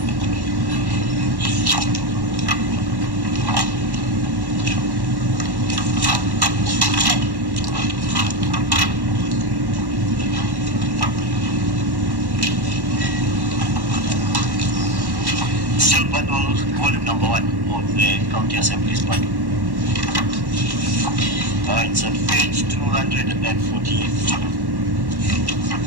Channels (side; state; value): left; late; 1.1 ms